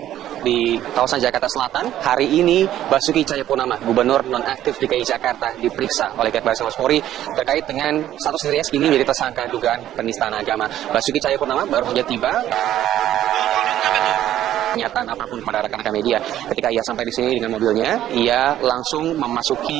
di kawasan Jakarta Selatan. Hari ini Basuki Cahayapurnama, Gubernur nonaktif DKI Jakarta, diperiksa oleh pihak Baris Krim Polri terkait dengan status dirinya kini menjadi tersangka dugaan penistaan agama. Basuki Cahayapurnama baru saja tiba. Pernyataan apapun kepada rekan-rekan media. Ketika ia sampai di sini dengan mobilnya, ia langsung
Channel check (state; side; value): quieter; left; 12.3 dB